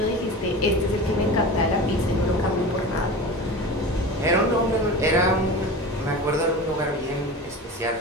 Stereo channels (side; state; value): both; normal; correlation 0.31